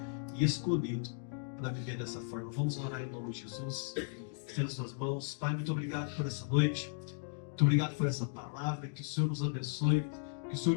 e escolhido para viver dessa forma. Vamos orar em nome de Jesus. Estenda suas mãos. Pai, muito obrigado por essa noite. Muito obrigado por essa palavra. Que o Senhor nos abençoe. Que o Senhor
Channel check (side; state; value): right; silent; digital silence